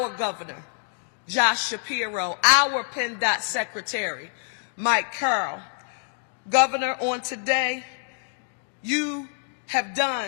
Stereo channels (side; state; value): right; silent; digital silence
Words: governor, Josh Shapiro, our PennDOT secretary, Mike Carroll. Governor, on today, you have